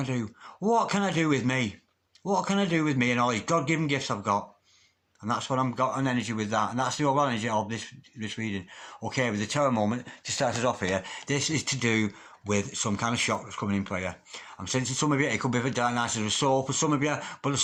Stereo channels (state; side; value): identical; both; correlation 1.00